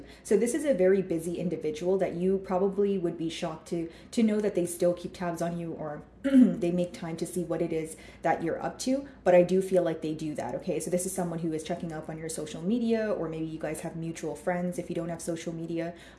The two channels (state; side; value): identical; both; correlation 1.00